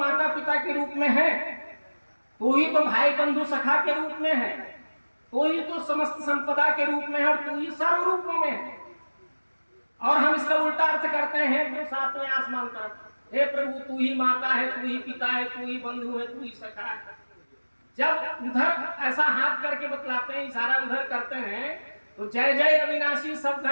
पिता के रूप में है, तू ही तो भाई बंधु सखा के रूप में है, तू ही तो समस्त संपदा के रूप में है और तू ही सर्व रूपों में है। और हम इसका उल्टा अर्थ करते हैं जो सातवें आसमान तरफ, हे प्रभु तू ही माता है, तू ही पिता है, तू ही बंधु है, तू ही सखा है। जब उधर ऐसा हाथ करके बतलाते हैं, इशारा उधर करते हैं, तो जय जय अविनाशी सब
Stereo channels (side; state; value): both; inverted; correlation -1.00